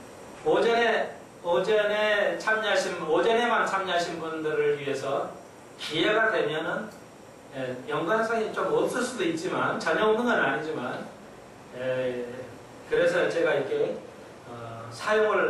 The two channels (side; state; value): both; identical; correlation 1.00